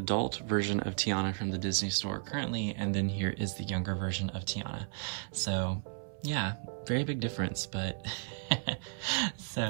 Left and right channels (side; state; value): left; silent; 55 dB below the other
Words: version of Tiana from the Disney store currently, and then here is the younger version of Tiana. So yeah, very big difference, but